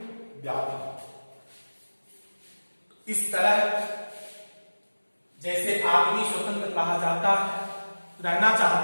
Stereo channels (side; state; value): both; inverted; correlation -1.00